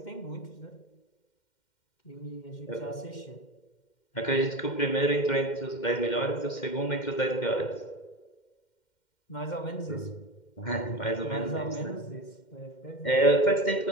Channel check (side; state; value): right; late; 2.1 ms